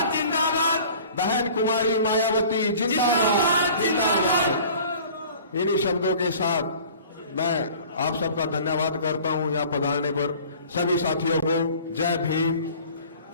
जिंदाबाद, बहन कुमारी मायावती जिंदाबाद, जिंदाबाद। इन्हीं शब्दों के साथ मैं आप सबका धन्यवाद करता हूं यहाँ पधारने पर। सभी साथियों को जय भीम,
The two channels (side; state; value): both; inverted; correlation -0.46